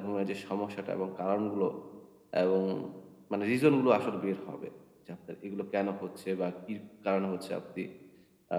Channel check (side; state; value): both; identical; correlation 1.00